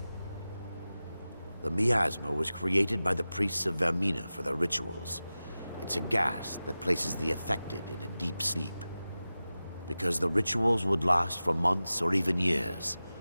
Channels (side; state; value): both; inverted; correlation -0.95